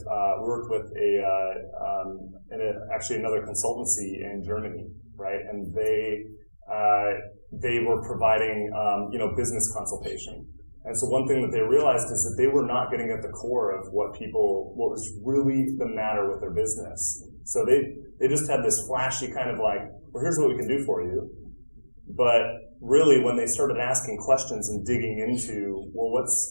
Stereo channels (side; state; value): both; inverted; correlation -1.00